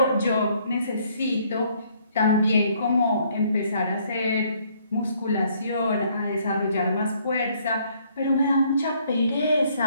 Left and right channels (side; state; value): both; inverted; correlation -0.65